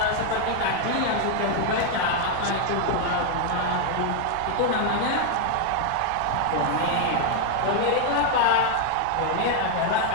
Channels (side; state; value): both; different; correlation 0.00